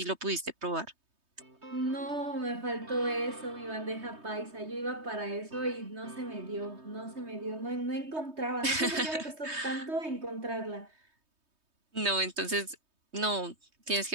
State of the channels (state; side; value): late; left; 3.2 ms